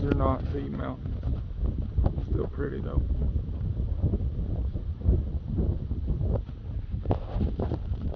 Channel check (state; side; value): identical; both; correlation 1.00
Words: are not feed mountains. Still pretty though.